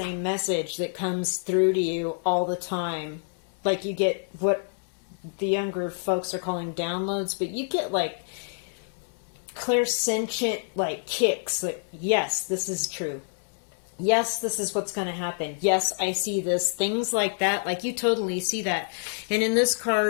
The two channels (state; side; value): silent; right; digital silence